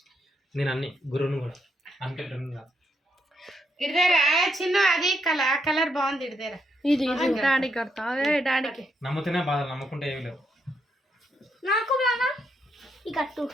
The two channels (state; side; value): normal; both; correlation 0.78